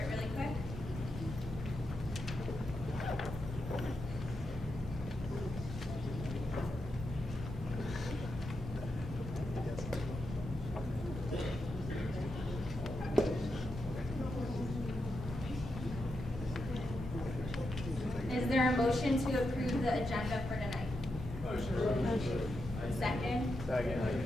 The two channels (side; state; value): both; normal; correlation 0.86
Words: really quick. Is there a motion to approve the agenda for tonight? Motion. Second? Second.